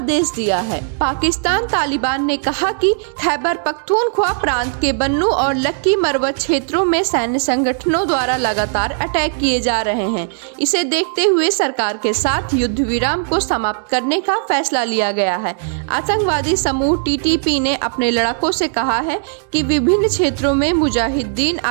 दिया है। पाकिस्तान तालिबान ने कहा कि खैबर पख्तूनख्वा प्रांत के बन्नू और लक्की मरवत क्षेत्रों में सैन्य संगठनों द्वारा लगातार अटैक किए जा रहे हैं। इसे देखते हुए सरकार के साथ युद्ध विराम को समाप्त करने का फैसला लिया गया है। आतंकवादी समूह टीटीपी ने अपने लड़ाकों से कहा है कि विभिन्न क्षेत्रों में मुजाहिदीन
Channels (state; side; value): silent; left; digital silence